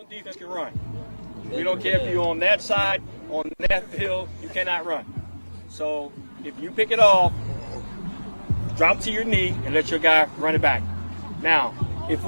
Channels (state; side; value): inverted; both; correlation -1.00